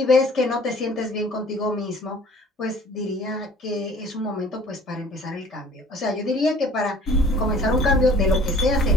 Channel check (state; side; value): normal; both; correlation 0.51